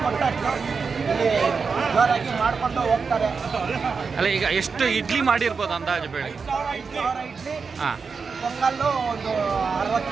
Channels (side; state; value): left; quieter; 5.2 dB